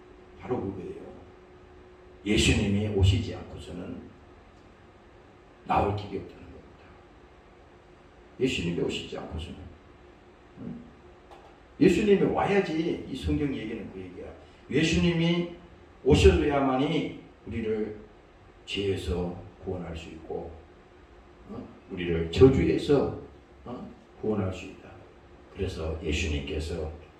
바로 그거예요. 예수님이 오시지 않고서는 나올 길이 없다는 겁니다. 예수님이 오시지 않고서는 예수님이 와야지. 이 성경 얘기는 그 얘기야. 예수님이 오셔야만이 우리를 죄에서 구원할 수 있고 우리를 저주에서 구원할 수 있다. 그래서 예수님께서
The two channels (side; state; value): both; identical; correlation 1.00